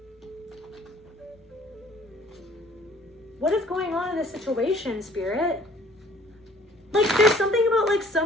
What is going on in this situation, Spirit? Like, there's something about, like,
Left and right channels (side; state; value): both; normal; correlation 0.55